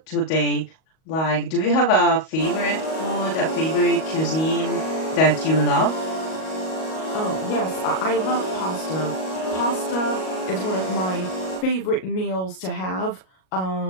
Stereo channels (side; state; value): right; late; 38 ms